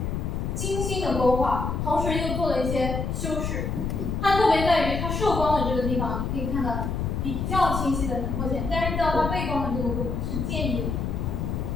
勾画，同时又做了一些修饰。它特别在于它受光的这个地方，可以看到比较清晰的轮廓线，但是到它背光的这个部分是渐隐的。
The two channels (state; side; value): noise; left; rumble, 2 dB below the sound